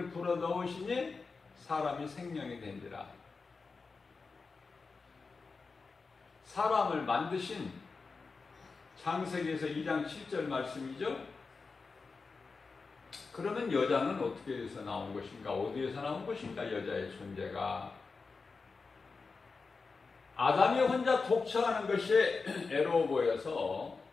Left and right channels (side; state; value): right; quieter; 4.5 dB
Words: 불어넣으시니 사람이 생명이 된지라. 사람을 만드신 창세기에서 2장 7절 말씀이죠. 그러면 여자는 어떻게 해서 나온 것인가? 어디에서 나온 것인가? 여자의 존재가. 아담이 혼자 독처하는 것이 애로워 보여서